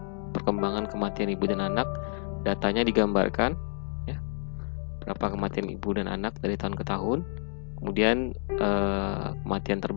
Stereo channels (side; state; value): right; silent; 55 dB below the other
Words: Perkembangan kematian ibu dan anak, datanya digambarkan ya. Berapa kematian ibu dan anak dari tahun ke tahun. Kemudian kematian